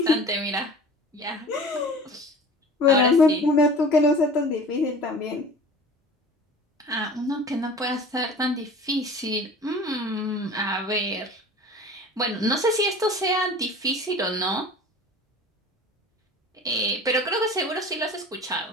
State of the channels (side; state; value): both; normal; correlation 0.41